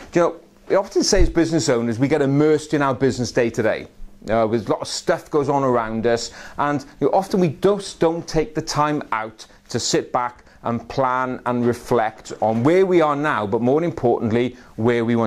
You know, we often say as business owners, we get immersed in our business day to day. With a lot of stuff goes on around us, and often we just don't take the time out to sit back and plan and reflect on where we are now, but more importantly, where we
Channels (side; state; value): both; identical; correlation 1.00